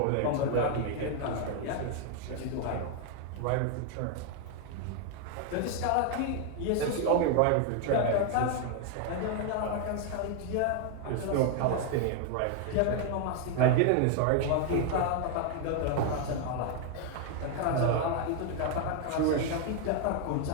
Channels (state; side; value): different; both; correlation 0.00